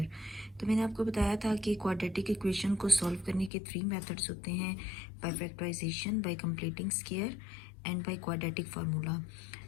तो मैंने आपको बताया था कि क्वाड्रेटिक इक्वेशन को सॉल्व करने के 3 मेथड्स होते हैं, by factorization, by completing square and by quadratic formula.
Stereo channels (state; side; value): drops out; right; at 3.5 s